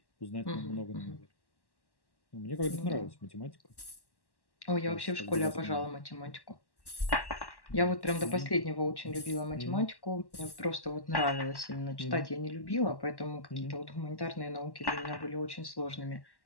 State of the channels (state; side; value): late; right; 1.1 ms